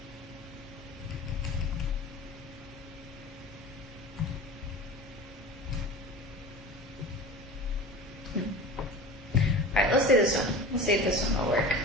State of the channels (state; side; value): normal; both; correlation 0.35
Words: All right, let's do this one. Let's see if this one will work.